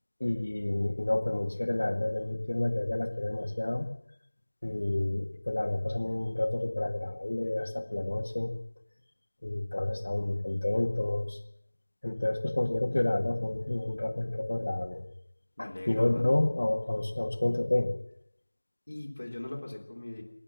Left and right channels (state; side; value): inverted; both; correlation -1.00